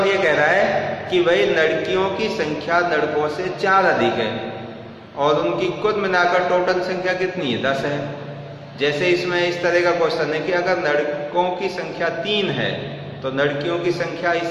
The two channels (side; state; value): both; identical; correlation 1.00